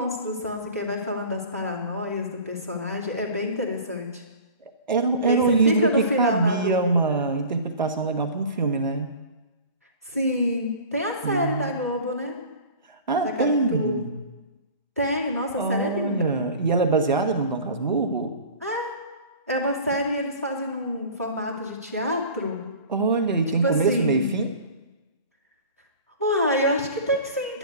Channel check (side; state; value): both; inverted; correlation -0.40